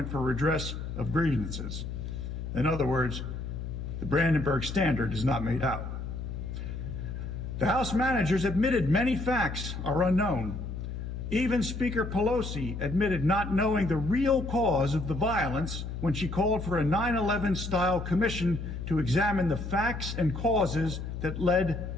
for redress of grievances. In other words, the Brandenburg Standard is not made out. The House managers admitted many facts are unknown. Even Speaker Pelosi admitted not knowing the real cause of the violence when she called for a 9/11-style commission to examine the facts and causes that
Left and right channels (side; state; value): left; noise; hum, 6 dB below the sound